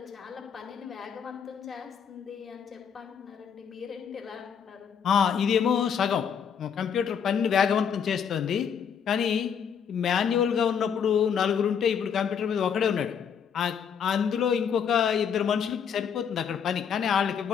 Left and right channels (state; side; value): quieter; right; 7.5 dB